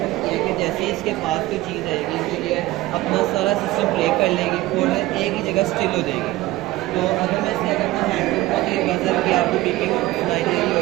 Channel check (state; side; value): quieter; left; 17.8 dB